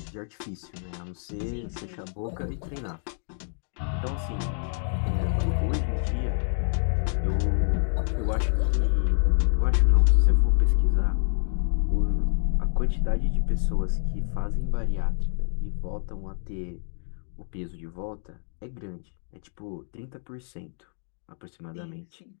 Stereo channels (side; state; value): right; silent; digital silence